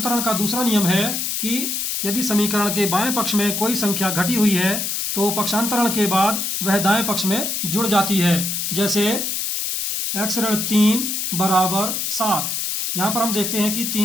का दूसरा नियम है कि यदि समीकरण के बाएं पक्ष में कोई संख्या घटी हुई है तो पक्षांतरण के बाद वह दाएं पक्ष में जुड़ जाती है। जैसे x ऋण 3 बराबर 7, यहाँ पर हम देखते हैं कि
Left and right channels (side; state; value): left; noise; hiss, 1 dB below the sound